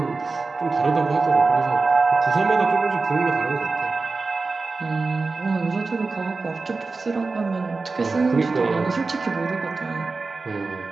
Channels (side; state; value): left; quieter; 3.9 dB